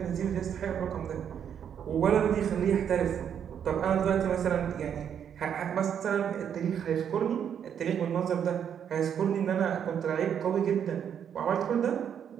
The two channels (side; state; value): left; quieter; 8.5 dB